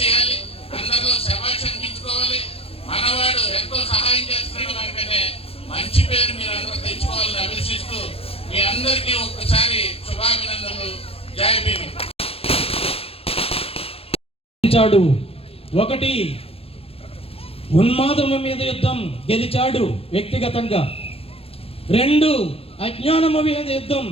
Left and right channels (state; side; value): late; right; 0.28 ms